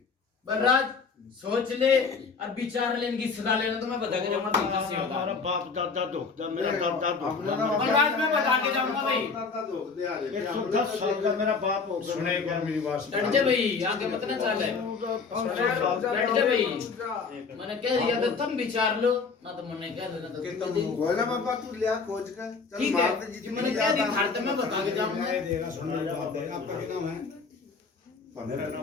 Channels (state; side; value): quieter; right; 4.9 dB